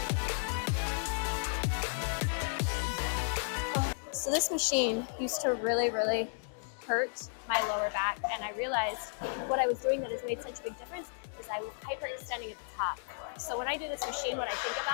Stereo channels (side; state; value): right; silent; digital silence